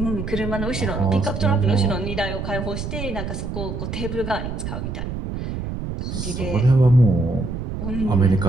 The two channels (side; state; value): right; noise; rumble, 5 dB below the sound